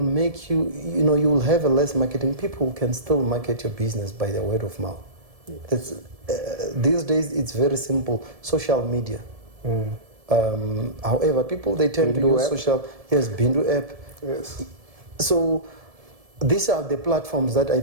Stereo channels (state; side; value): late; left; 1.7 ms